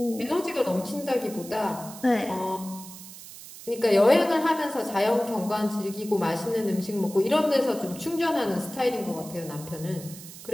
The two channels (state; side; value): noise; right; hiss, 15 dB below the sound